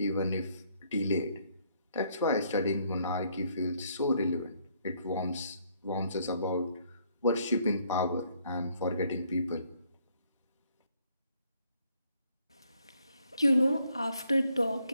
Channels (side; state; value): both; inverted; correlation -0.68